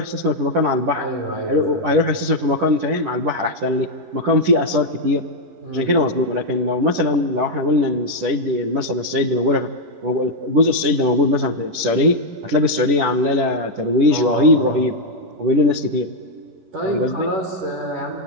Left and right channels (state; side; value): late; left; 10 ms